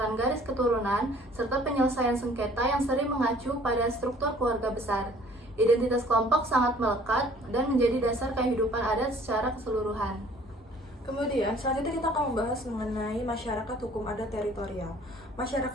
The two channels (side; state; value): both; normal; correlation 0.54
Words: garis keturunan, serta penyelesaian sengketa yang sering mengacu pada struktur keluarga besar. Identitas kelompok sangat melekat dan menjadi dasar kehidupan adat secara keseluruhan. Kemudian, selanjutnya kita akan membahas mengenai masyarakat hukum adat teritorial.